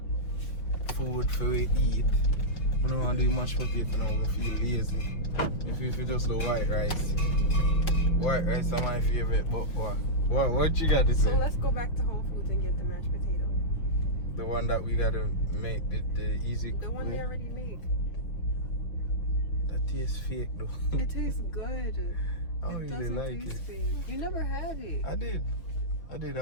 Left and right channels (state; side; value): late; right; 6.1 ms